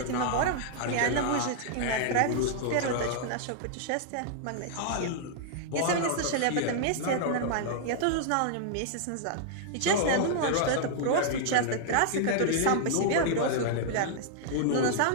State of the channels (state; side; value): different; both; correlation -0.01